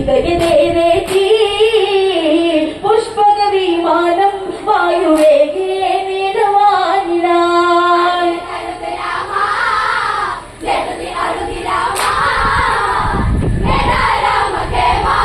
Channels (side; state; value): both; identical; correlation 1.00